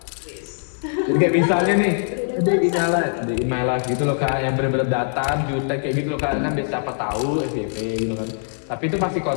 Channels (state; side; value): silent; right; digital silence